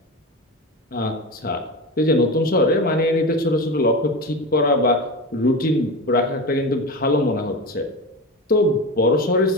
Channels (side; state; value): both; normal; correlation 0.24